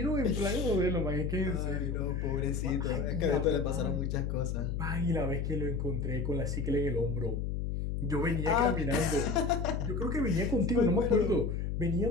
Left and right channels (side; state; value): left; noise; hum, 2 dB below the sound